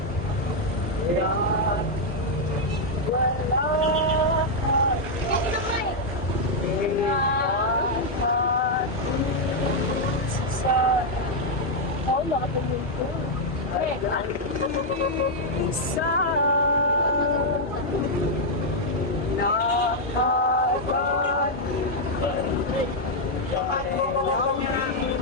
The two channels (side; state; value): both; normal; correlation -0.02